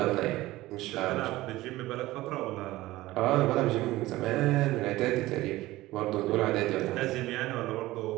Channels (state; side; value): quieter; left; 17.6 dB